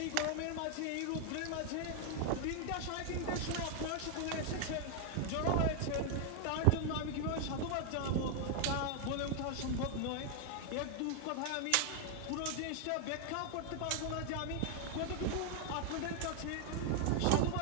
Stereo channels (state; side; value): different; both; correlation 0.00